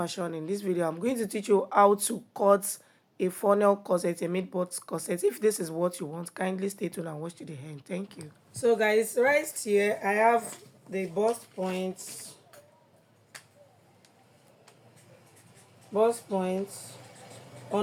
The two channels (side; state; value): both; identical; correlation 1.00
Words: In this video, I'm going to teach you how to cut a funnel corset, a mid-butt corset. If this is what you want, kindly stay tuned and watch to the end. Thank you. So guys, right here, I have the bust points,